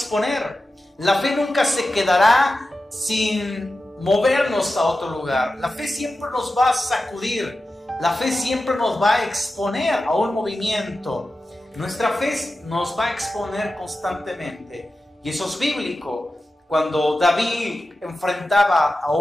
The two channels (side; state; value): both; normal; correlation 0.93